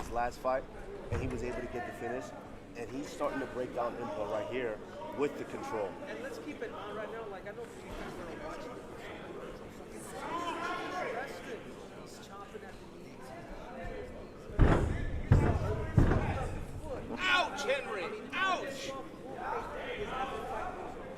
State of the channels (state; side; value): identical; both; correlation 1.00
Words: last fight, and he was able to get the finish. And he's starting to break down Impa right here with the control. And let's keep it on right now. Like, I know you guys are watching it. He's chopping at the knees. Ouch, Henry! Ouch!